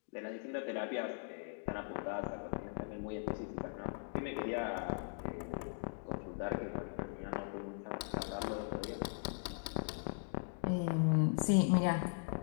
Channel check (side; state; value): right; silent; digital silence